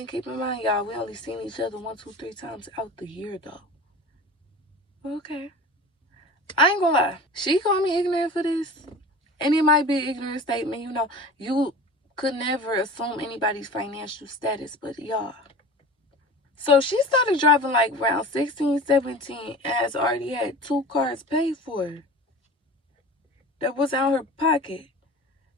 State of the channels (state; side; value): normal; both; correlation 0.37